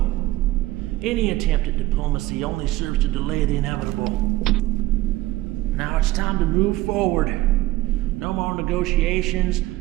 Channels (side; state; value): left; quieter; 17.1 dB